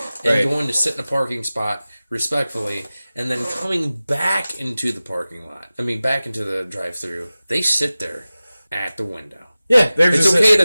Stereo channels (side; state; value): both; inverted; correlation -0.97